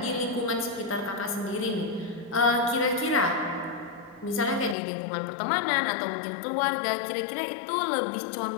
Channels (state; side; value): drops out; right; at 4.8 s